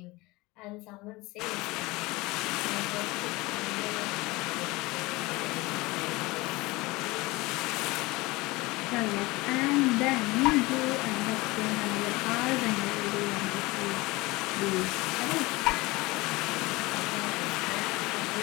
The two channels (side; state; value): right; quieter; 22.1 dB